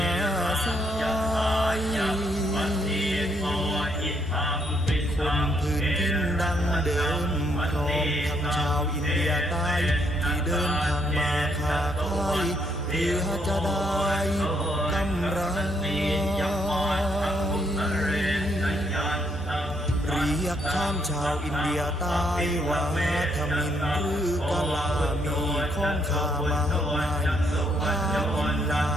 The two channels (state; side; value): normal; both; correlation 0.73